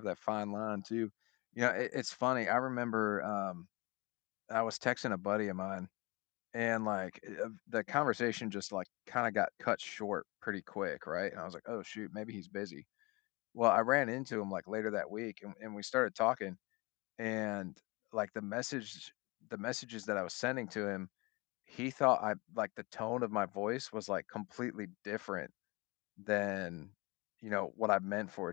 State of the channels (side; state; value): right; quieter; 25.7 dB